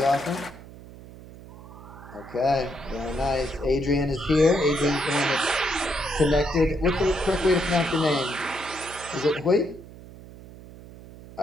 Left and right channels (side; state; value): right; noise; hum, 17 dB below the sound